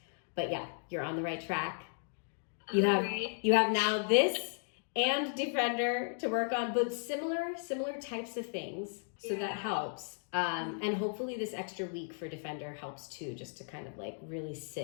But yeah, you're on the right track. You have now this and Defender to work on, but similar types of things. So that helps. And hopefully this extra week for Defender helps too, just to kind of really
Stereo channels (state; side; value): silent; right; 54 dB below the other